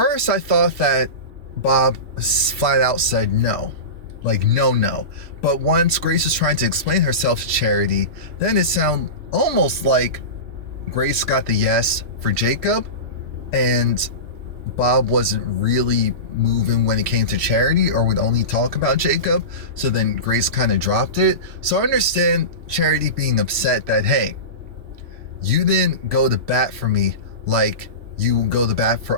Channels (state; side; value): late; left; 3.1 ms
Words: I thought that Bob flat out said no. Like, no. But once Grace was trying to explain herself to Charity, then it sounded almost like Grace got the yes for Jacob, and Bob wasn't really moving when it came to Charity, or would only talk about Jacob. So then Grace kind of dropped it. So I understand Charity being upset that, hey, you didn't go to bat for me like you go to bat